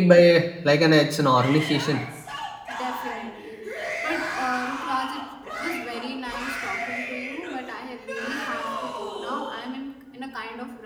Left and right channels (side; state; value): both; identical; correlation 1.00